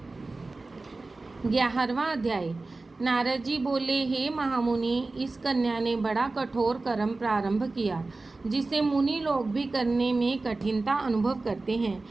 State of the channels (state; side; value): quieter; left; 3.4 dB